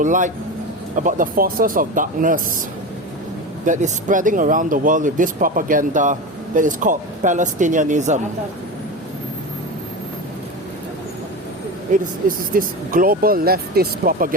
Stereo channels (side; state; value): both; normal; correlation 0.24